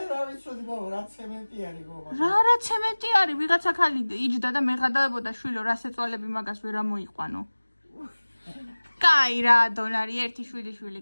რა ვიცოდი გოგო, რა ცემენტი არის გოგო. რა ცემენტი არის? ვიღაცა ხალი იჯდა და მეღადაებოდა შვილო, რა სეწვალები მაგას ვერ ამოიყვანო. კაი რა, დონარი, ერთი შვილი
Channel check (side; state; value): both; inverted; correlation -1.00